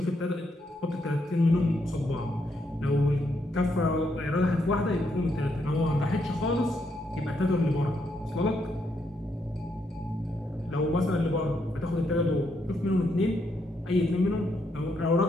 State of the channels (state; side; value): normal; both; correlation 0.77